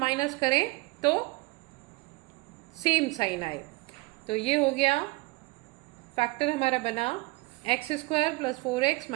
करें तो सेम साइन आए। तो ये हो गया फैक्टर हमारा बना x square plus 4x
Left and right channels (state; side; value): quieter; left; 24.0 dB